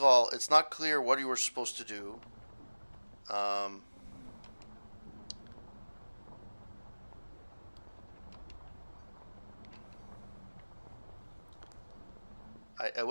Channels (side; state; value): both; inverted; correlation -1.00